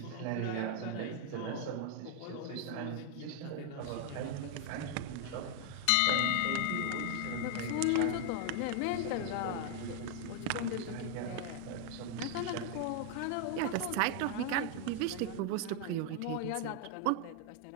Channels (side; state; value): both; different; correlation 0.00